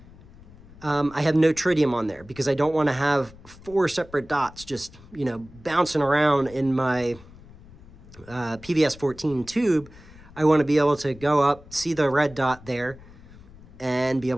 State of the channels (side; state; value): left; noise; rumble, 21 dB below the sound